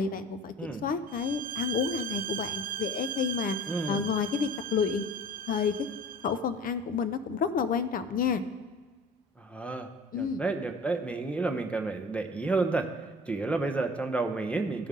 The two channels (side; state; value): both; normal; correlation 0.44